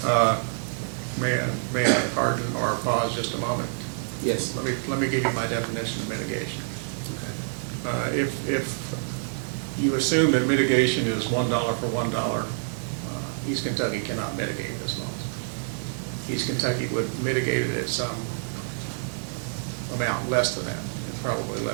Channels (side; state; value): left; silent; 60 dB below the other